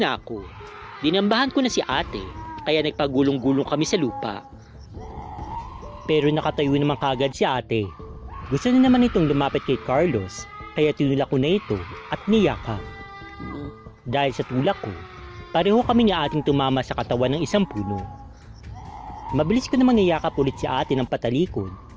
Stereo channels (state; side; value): identical; both; correlation 1.00